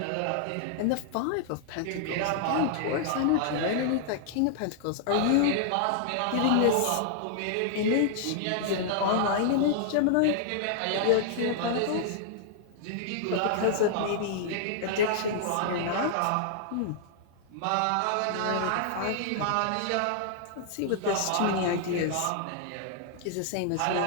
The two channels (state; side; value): different; both; correlation -0.01